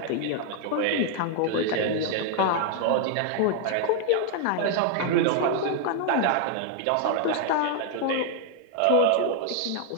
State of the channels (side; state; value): both; different; correlation 0.00